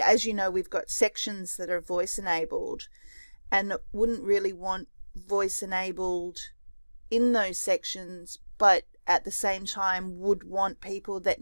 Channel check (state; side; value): inverted; both; correlation -1.00